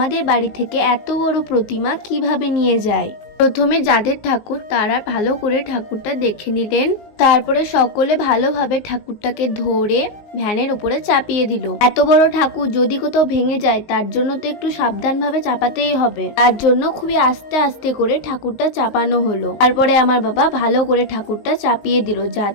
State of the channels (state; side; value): late; right; 19 ms